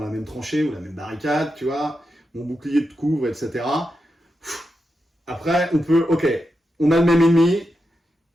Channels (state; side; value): normal; both; correlation 0.88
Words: la même tranchée ou la même barricade, tu vois, mon bouclier te couvre, etc. Après, on peut, ok, on a le même ennemi,